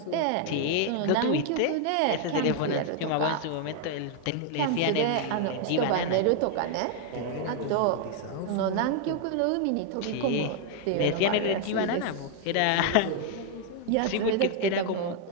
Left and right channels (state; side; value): different; both; correlation 0.00